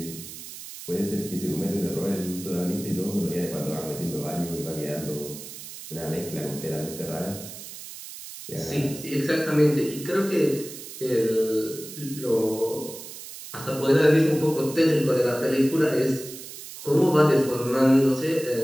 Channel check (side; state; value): right; noise; hiss, 12 dB below the sound